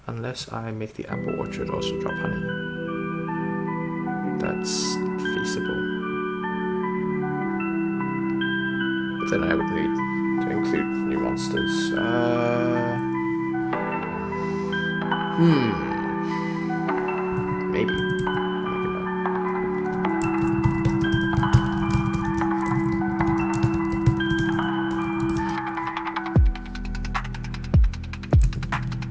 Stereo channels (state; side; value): identical; both; correlation 1.00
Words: Unless I make the apple orchard also drop honey. That's feasible. But then I would need to include new monsters. Maybe.